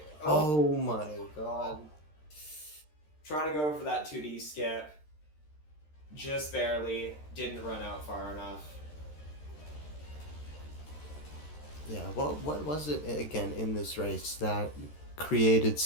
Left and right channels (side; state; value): right; late; 13 ms